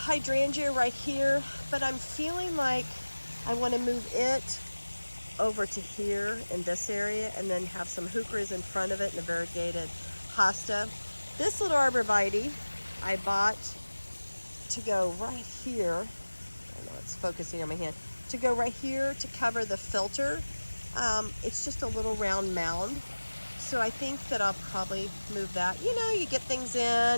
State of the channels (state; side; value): inverted; both; correlation -1.00